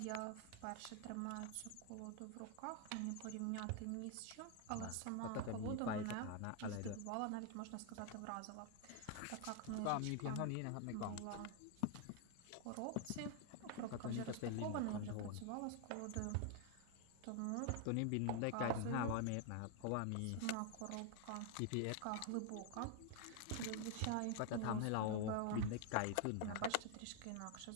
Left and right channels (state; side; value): different; both; correlation 0.00